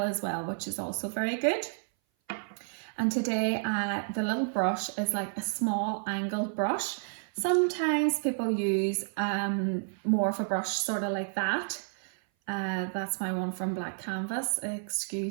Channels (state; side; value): silent; left; 56 dB below the other